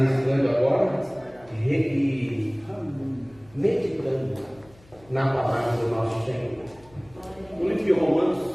agora e meditando na palavra do nosso Senhor. No livro de Romanos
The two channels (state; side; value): noise; left; hum, 27 dB below the sound